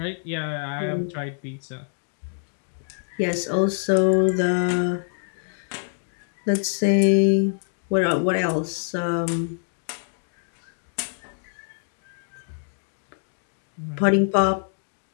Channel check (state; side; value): silent; right; digital silence